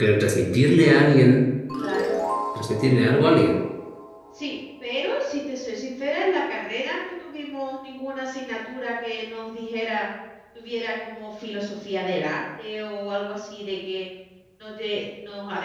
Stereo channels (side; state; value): both; identical; correlation 1.00